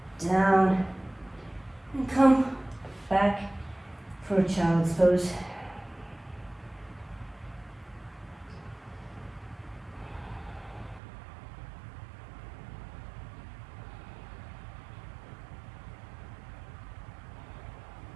down and come back for a child's pose.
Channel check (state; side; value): drops out; left; at 11.0 s